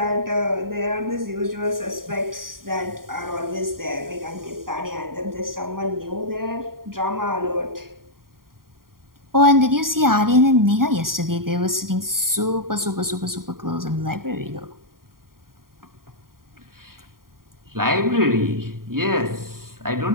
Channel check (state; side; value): late; left; 0.92 ms